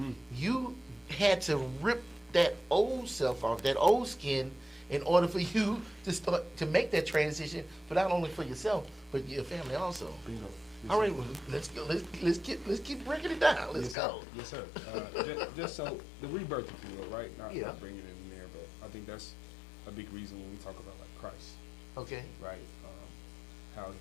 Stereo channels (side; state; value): right; drops out; at 14.0 s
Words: you had to rip that old self off, that old skin, in order for you to start to make that transition, but not only for yourself, but your family also. Bingo. Yes, All right, sir. well, let's go. Let's keep breaking it down. Let's Yes, go. Sir. Yes, sir. Just so the rebirth, if you will, right? Not bringing it in there, but I think that's a big reason when we talk about like Christ, Okay. right? How